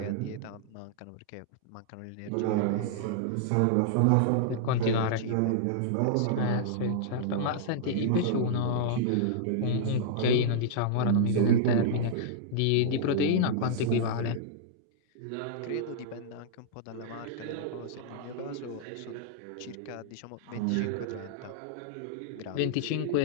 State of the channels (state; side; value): different; both; correlation -0.02